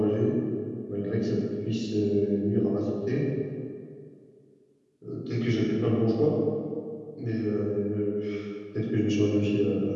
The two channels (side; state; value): both; identical; correlation 1.00